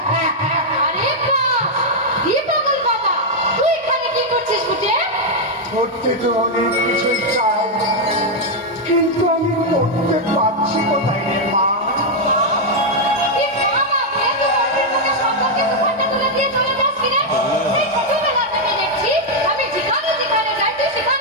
আরে বাহ, দীপকল বাবা, তুই এখানে কি করছিস বুঝে? পড়তে তো অনেক কিছুই চাই, কিন্তু আমি পড়তে পারছি কোথায় রে মা? এই বাবা, মেয়ে তো ওর মুখে সম্পর্কে দুখানা তুলে দিয়ে চলে যাস কিরে? এই ছোটবেলা থেকে দেখছি, আমি যেখানে যেখানে যাই তুই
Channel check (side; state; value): both; normal; correlation -0.01